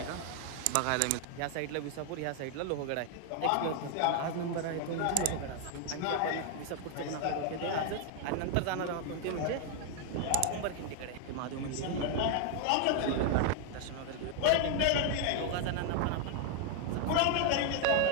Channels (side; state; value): both; different; correlation 0.00